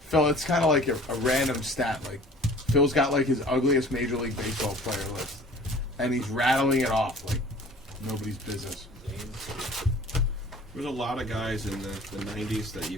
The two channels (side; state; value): both; normal; correlation 0.47